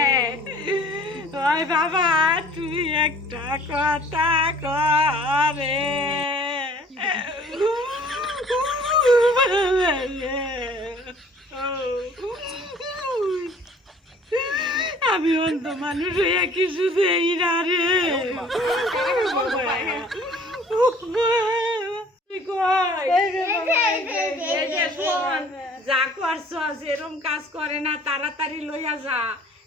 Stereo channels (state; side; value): normal; both; correlation 0.52